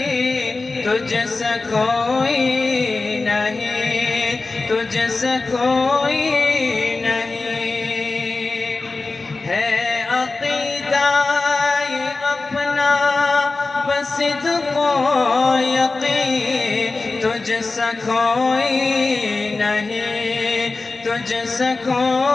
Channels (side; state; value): right; quieter; 3.6 dB